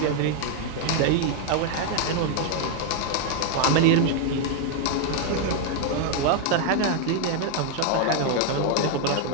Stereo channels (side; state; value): both; different; correlation 0.00